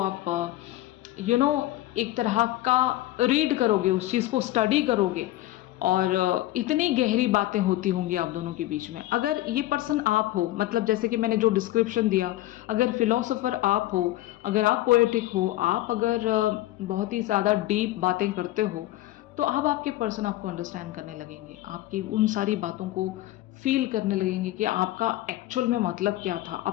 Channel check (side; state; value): right; quieter; 16.0 dB